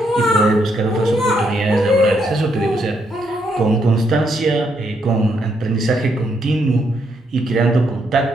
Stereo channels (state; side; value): normal; both; correlation 0.76